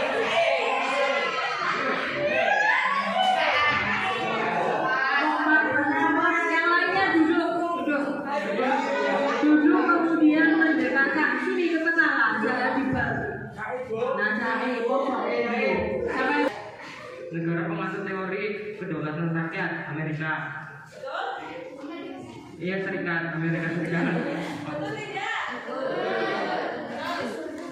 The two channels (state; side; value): identical; both; correlation 1.00